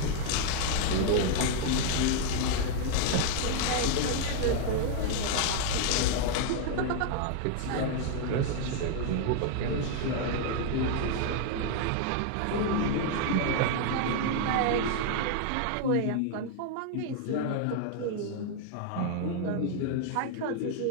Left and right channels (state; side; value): different; both; correlation 0.00